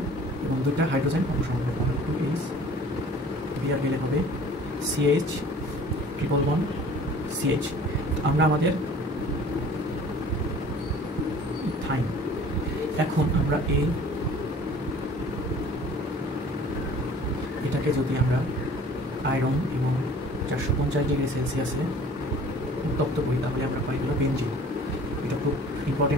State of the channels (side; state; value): both; normal; correlation 0.48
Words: এবং 2টা হাইড্রোজেন অপসারণ হবে, তাহলে 2H Br মিলে হবে CH ট্রিপল বন্ড CH। আমরা আমাদের ইথাইন। এখন আমরা এটাকে যদি আমরা আয়রন এবং 450 ডিগ্রি সেলসিয়াসে উত্তপ্ত করি তাহলে আমরা পাই হলো বেনজিন। এটা খুব